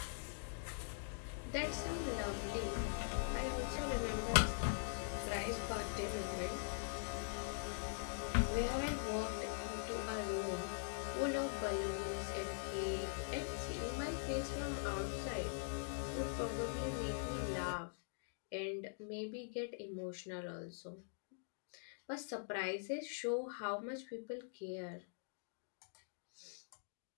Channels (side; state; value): right; silent; digital silence